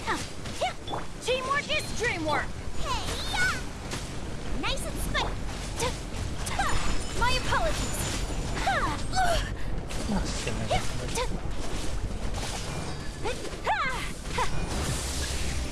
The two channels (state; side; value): identical; both; correlation 1.00